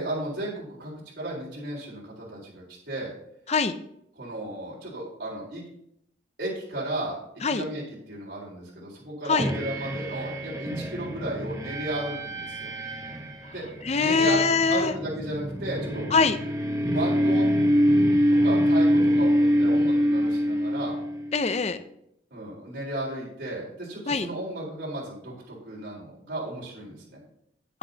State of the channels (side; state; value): both; normal; correlation 0.63